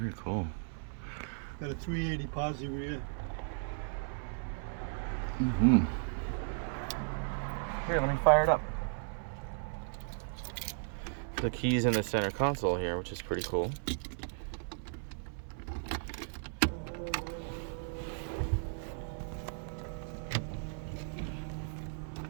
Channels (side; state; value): left; silent; 54 dB below the other